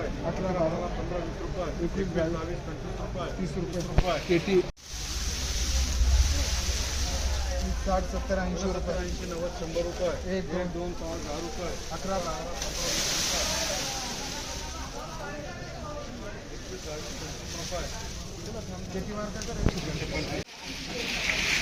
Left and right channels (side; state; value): both; identical; correlation 1.00